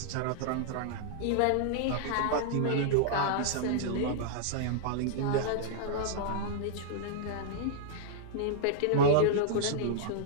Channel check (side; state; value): both; different; correlation -0.01